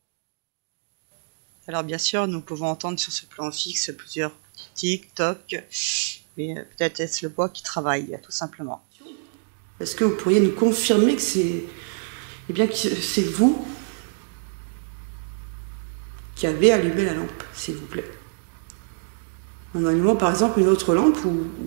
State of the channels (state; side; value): silent; left; digital silence